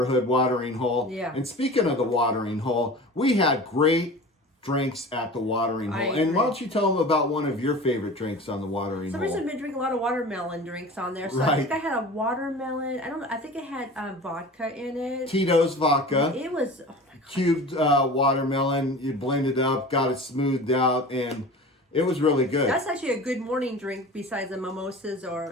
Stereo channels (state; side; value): normal; both; correlation 0.37